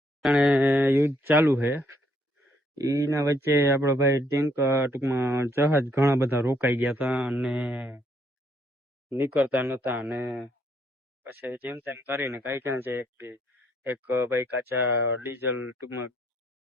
અને યુદ્ધ ચાલુ છે. એના વચ્ચે આપણો ભાઈ ટેન્ક ટૂંકમાં જહાજ ઘણા બધા રોકાઈ ગયા હતા અને નીકળતા નતા. અને પછી જેમ તેમ કરીને કઈ છે એક ભાઈ કાચા ડીઝલ ટૂંકમાં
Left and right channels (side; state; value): both; normal; correlation 0.70